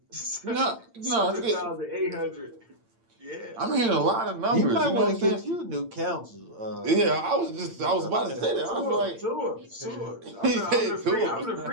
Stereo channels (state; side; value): late; left; 8.8 ms